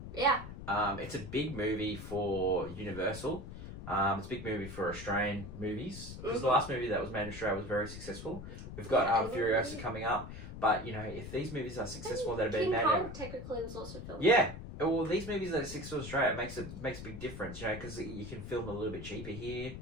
Yeah. It's a big movie for Universal. It's a big movie for Australian movies because the last movie that was made in Australia was very successful. We've got Furiosa coming up, but if these movies are successful that have been made, King Kong technically was also filmed. Yeah. Well, these movies that are successful in Australia, it makes a big difference, because you can film a little bit cheaper here.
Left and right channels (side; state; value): left; noise; rumble, 10 dB below the sound